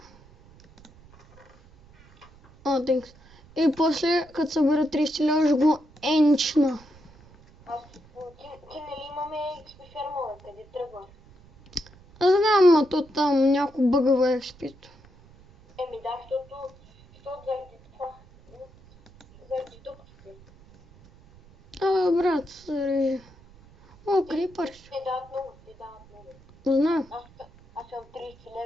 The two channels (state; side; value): noise; right; rumble, 25 dB below the sound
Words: Thanks. И после, като събера 30 лева, ще го енчна. Ти нали имаме XP фермове, къде тръгваш? Аз знам, а то там някой бъгава експито. Да, защото заради това, заради дупките. Брат, зарежи. Крипър. Те дават много. Знам. Аз съм 30